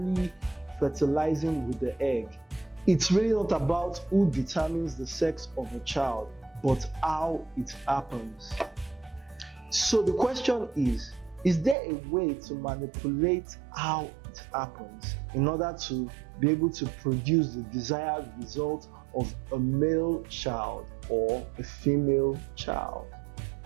fertilizing with the egg, it's really not about who determines the sex of a child, but how it happens. So the question is there a way to manipulate how it happens in order to be able to produce the desired result of a male child or a female child?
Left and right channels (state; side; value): drops out; left; at 11.8 s